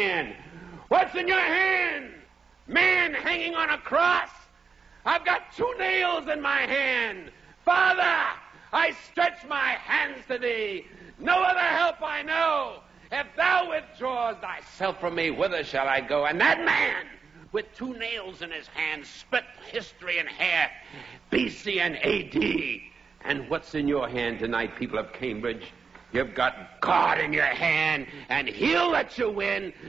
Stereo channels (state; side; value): quieter; left; 5.4 dB